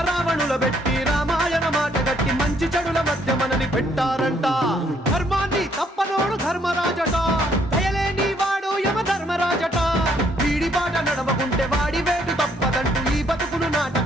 రావణుల పెట్టి రామాయణ మాట గట్టి మంచి చెడుల మధ్య మనని పెట్టారంట. ధర్మాన్ని తప్పనోడు ధర్మరాజట, దయలేని వాడు యమ ధర్మరాజట. వీడి బాట నడవకుంటే వాడి వేటు తప్పదంటూ ఈ బతుకును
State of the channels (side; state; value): both; normal; correlation 0.68